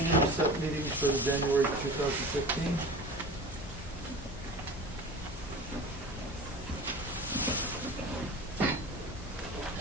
set meetings for the January 2015.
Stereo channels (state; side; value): normal; both; correlation 0.36